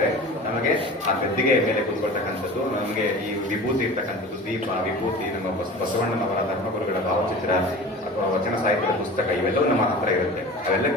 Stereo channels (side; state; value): both; normal; correlation 0.37